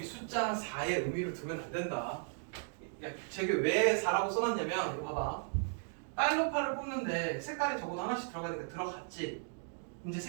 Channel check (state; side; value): silent; left; 54 dB below the other